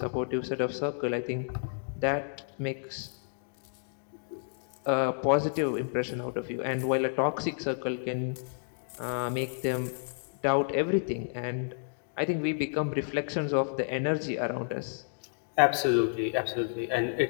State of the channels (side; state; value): right; silent; digital silence